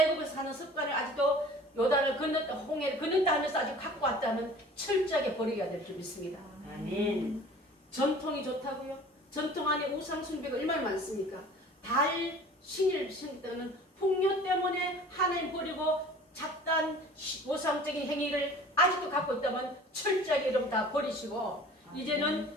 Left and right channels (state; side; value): normal; both; correlation 0.45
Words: 사는 습관을 아직도 요단을 건넜다 홍해를 건넜다 하면서 아직 갖고 왔다면 철저하게 버려야 될 줄 믿습니다. 아멘. 전통이 좋다고요? 전통 안에 우상 숭배가 얼마나 많습니까? 달 신일 때는 풍요 때문에 하나님 버리고 잡단 모상적인 행위를 아직도 갖고 있다면 철저하게 여러분 다 버리시고 이제는